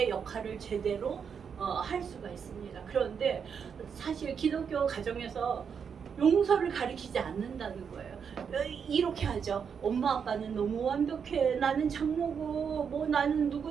역할을 제대로 할 수가 있습니다. 그런데 사실 기독교 가정에서 용서를 가르치지 않는다는 거예요. 이렇게 하죠. 엄마 아빠는 너무 완벽해. 나는 장모고 뭐 나는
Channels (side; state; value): left; quieter; 6.8 dB